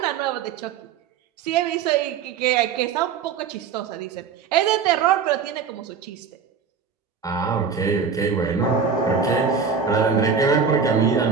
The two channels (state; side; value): quieter; left; 6.3 dB